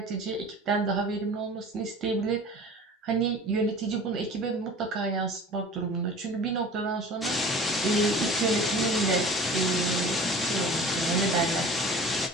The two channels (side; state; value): both; normal; correlation 0.41